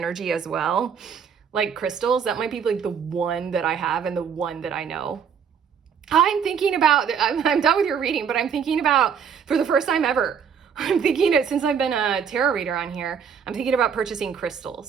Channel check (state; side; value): quieter; left; 7.2 dB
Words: as well? Like crystals, that might be like the one that I have and the one that I know. I'm thinking about, I'm done with your reading, but I'm thinking about, for the first time ever, I'm thinking it since I've been a tarot reader on here, I'm thinking about purchasing